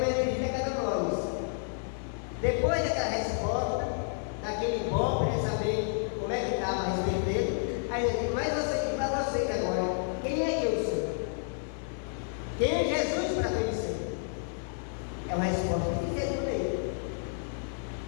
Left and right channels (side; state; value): right; silent; digital silence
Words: dirigir a cada nós. Depois daquela resposta, daquele bom para saber como é que estava a respeito dele, aí ele diz, mas você, para vocês agora, quem é que eu sou? Quem é Jesus para conhecer? É uma resposta que responder.